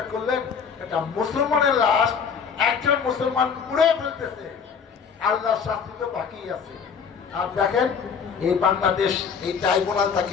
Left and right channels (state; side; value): quieter; right; 6.5 dB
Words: করলেন, এটা মুসলমানের লাশ একজন মুসলমান পুড়ে ফেলতেছে। আল্লাহর শাস্তি তো বাকি আছে। আর দেখেন এই বাংলাদেশ, এই ট্রাইব্যুনাল